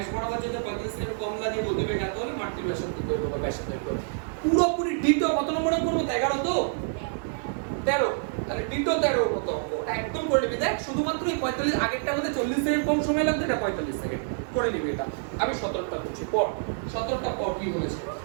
বরাবর যেতে 35 সেকেন্ড কম লাগে, গতিবেগ এত হলে মাটির ব্যাসার্ধ দৈর্ঘ্য বা ব্যাসার্ধ দৈর্ঘ্য। পুরোপুরি ডিটো কত নম্বরে করব? 11 তো 13। তাহলে ডিটো 13 কত অঙ্ক একদম করে নিবি। দেখ শুধুমাত্র এই 45, আগেরটা মধ্যে 40 সেকেন্ড কম সময় লাগবে, এটা 45 সেকেন্ড করে নিবি। এটা আমি 17টা করছি, পর 17টা পর কি বলেছে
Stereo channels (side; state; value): left; silent; digital silence